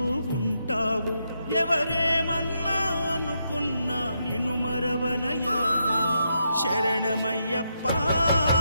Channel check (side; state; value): both; inverted; correlation -0.81